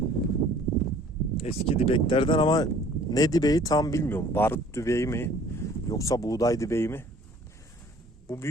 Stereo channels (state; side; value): normal; both; correlation 0.53